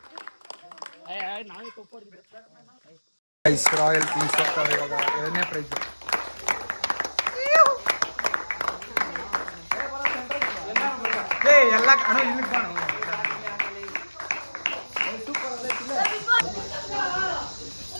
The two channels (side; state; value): both; inverted; correlation -1.00